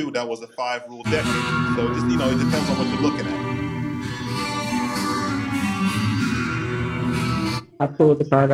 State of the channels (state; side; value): identical; both; correlation 1.00